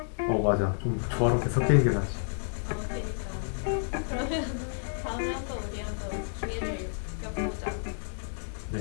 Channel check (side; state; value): right; silent; 58 dB below the other